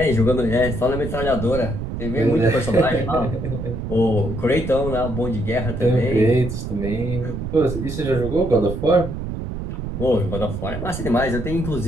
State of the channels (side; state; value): right; noise; rumble, 6 dB below the sound